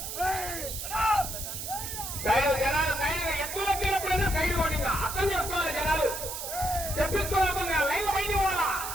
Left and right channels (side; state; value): right; noise; hiss, 6 dB below the sound